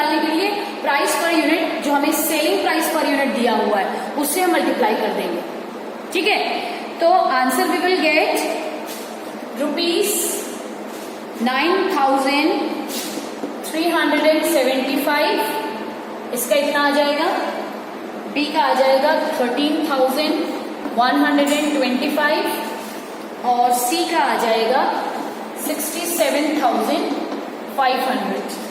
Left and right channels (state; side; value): identical; both; correlation 1.00